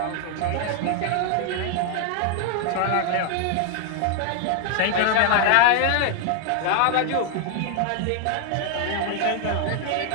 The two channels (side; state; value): both; different; correlation 0.00